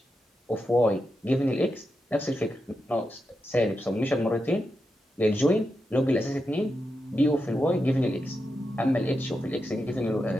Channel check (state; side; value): normal; both; correlation 0.87